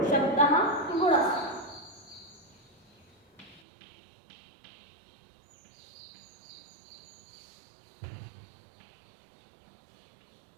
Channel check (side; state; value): left; drops out; at 3.6 s